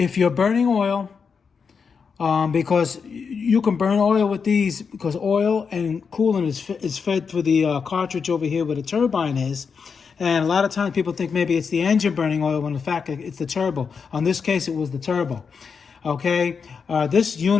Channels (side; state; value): right; quieter; 5.8 dB